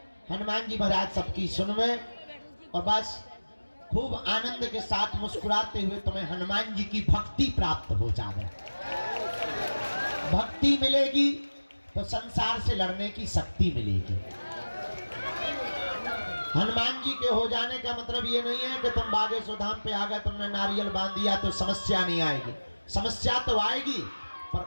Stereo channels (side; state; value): both; inverted; correlation -1.00